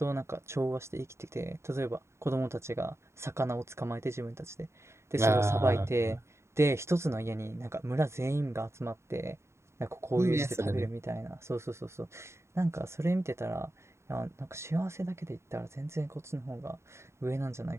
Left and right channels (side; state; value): left; late; 0.13 ms